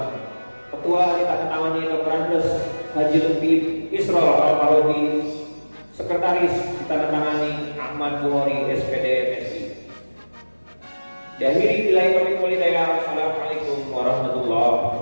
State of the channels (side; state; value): both; inverted; correlation -1.00